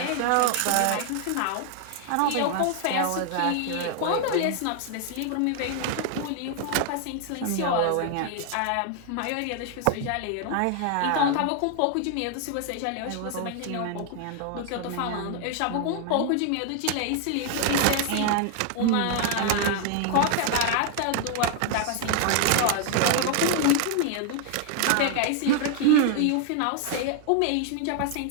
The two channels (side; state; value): both; different; correlation 0.00